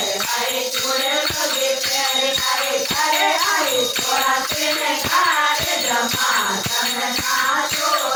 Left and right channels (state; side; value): identical; both; correlation 1.00